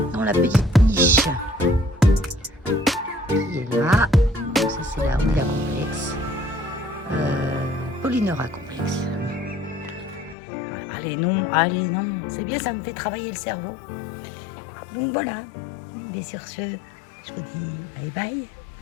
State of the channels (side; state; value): right; drops out; at 10.4 s